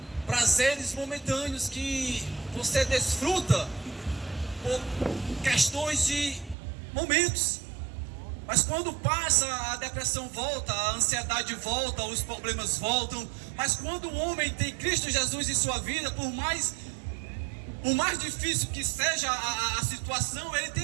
prazeres momentâneos que você desfruta por questões de momentos. Mas quando passa, a depressão volta, a ansiedade volta, os problemas voltam. Mas quando o homem tem Cristo Jesus em sua vida, por mais difícil que seja a situação, ele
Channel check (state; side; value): drops out; left; at 6.6 s